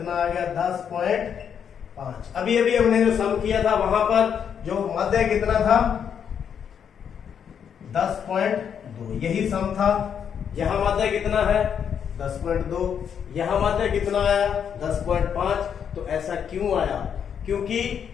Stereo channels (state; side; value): quieter; right; 7.9 dB